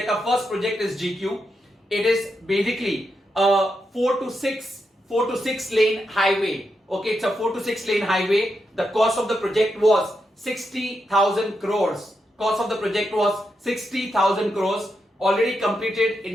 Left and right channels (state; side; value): normal; both; correlation 0.84